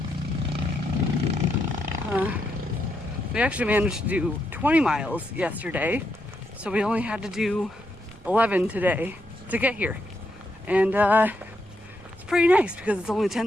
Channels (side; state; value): right; noise; rumble, 24 dB below the sound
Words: We actually managed to do 20 miles yesterday, so we only had to do 11 today to get here. And it's pretty nice because it's only